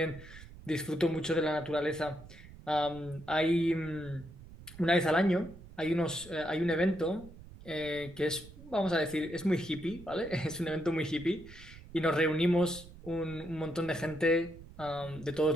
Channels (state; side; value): noise; right; rumble, 18 dB below the sound